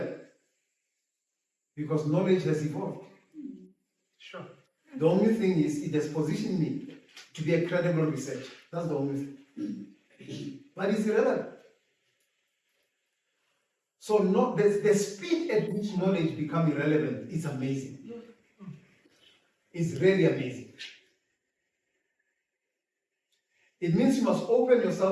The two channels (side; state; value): both; identical; correlation 1.00